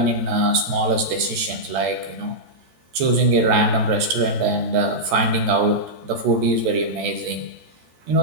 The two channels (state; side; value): late; left; 13 ms